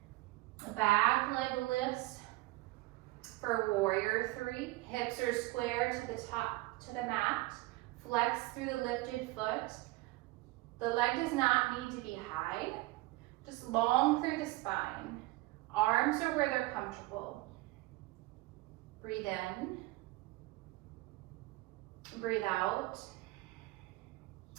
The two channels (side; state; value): left; quieter; 20.3 dB